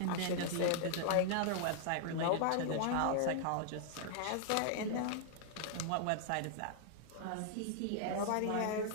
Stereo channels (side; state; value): both; different; correlation -0.01